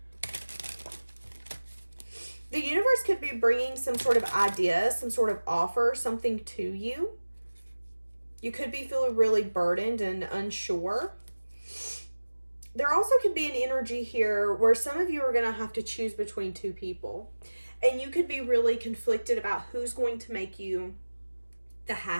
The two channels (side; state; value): both; inverted; correlation -1.00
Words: The universe could be bringing some sort of idea, some sort of offer, something to you. You could be feeling really burdened and unsure. There also could be an energy here where some of you are going to have to choose between two people. And you could be really conflicted about who's going to make you the